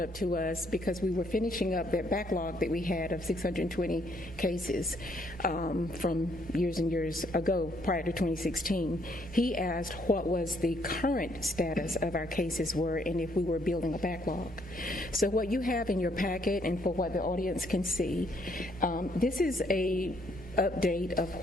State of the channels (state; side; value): noise; left; hum, 25 dB below the sound